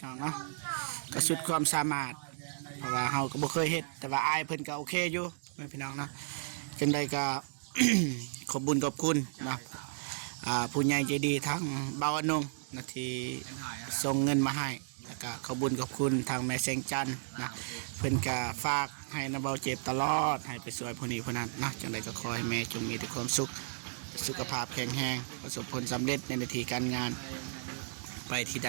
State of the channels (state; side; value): silent; left; digital silence